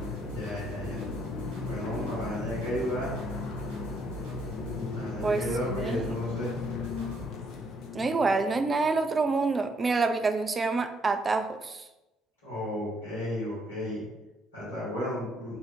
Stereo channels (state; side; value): normal; both; correlation 0.71